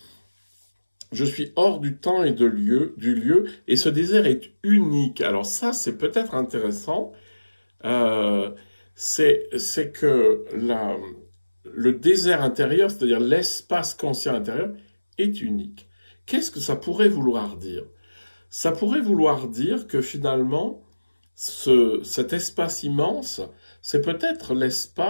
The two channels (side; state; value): both; inverted; correlation -1.00